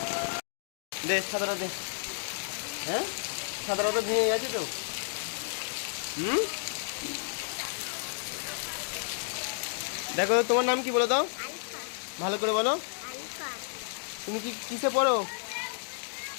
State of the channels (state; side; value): silent; right; digital silence